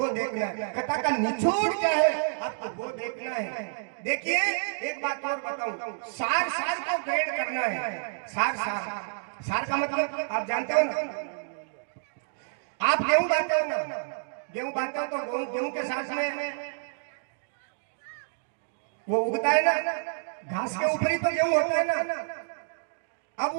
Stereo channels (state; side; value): silent; left; digital silence